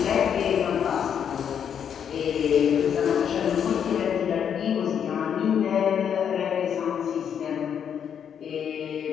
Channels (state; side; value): quieter; right; 8.2 dB